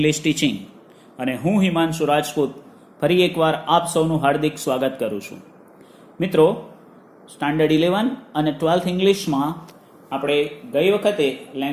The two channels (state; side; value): identical; both; correlation 1.00